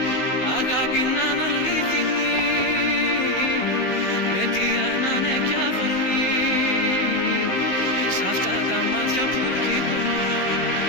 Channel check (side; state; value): right; late; 16 ms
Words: Αγάπη να είναι αλήθινη, αιτία να είναι κι αφορμή. Σ' αυτά τα μάτια που κοιτώ,